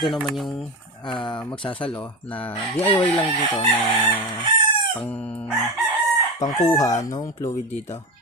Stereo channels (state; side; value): normal; both; correlation 0.21